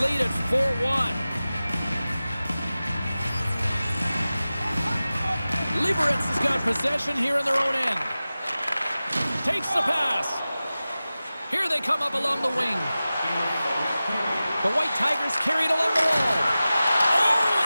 lead at 4-1. Liberec has got possession here in their own end. Takes the pass. Here they come up along the wing. The White Tigers carried along the wall. Oh,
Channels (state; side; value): inverted; both; correlation -0.96